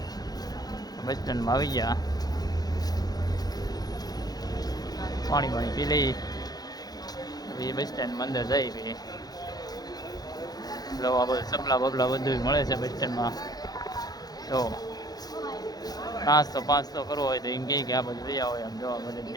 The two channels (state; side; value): late; right; 0.19 ms